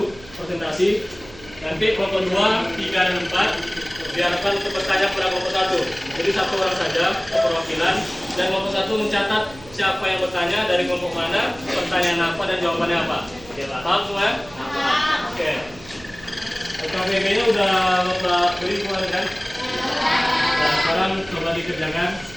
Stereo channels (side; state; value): right; noise; hum, 20 dB below the sound